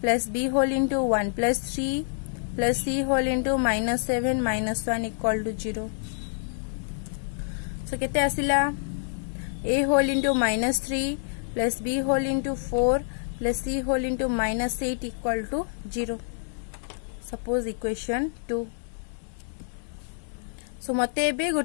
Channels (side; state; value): right; silent; digital silence